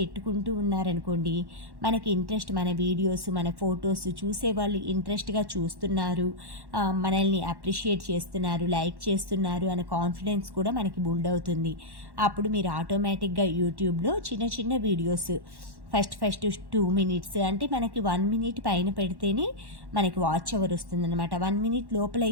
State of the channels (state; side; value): late; left; 1.1 ms